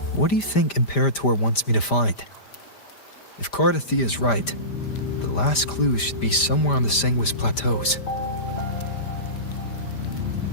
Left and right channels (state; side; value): late; right; 5.0 ms